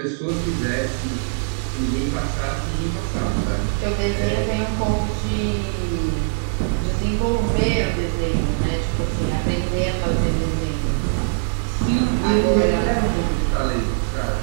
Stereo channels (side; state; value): left; silent; digital silence